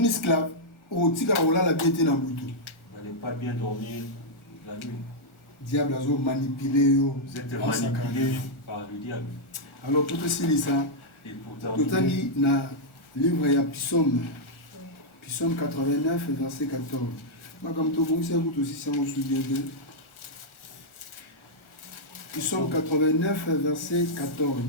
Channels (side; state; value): right; late; 1.4 ms